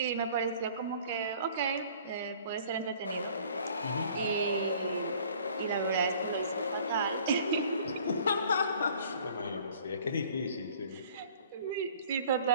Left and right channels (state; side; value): inverted; both; correlation -0.53